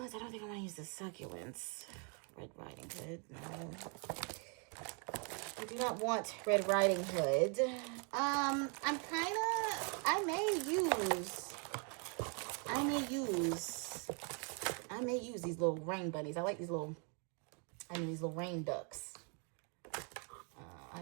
I don't think I want to use the succulents. Red Riding Hood, no. I do not want Red Riding Hood. I may use these little rain bunnies. I like these little rain ducks. I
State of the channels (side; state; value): left; quieter; 38.1 dB